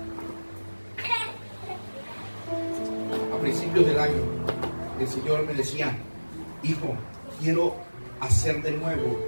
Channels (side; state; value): both; inverted; correlation -1.00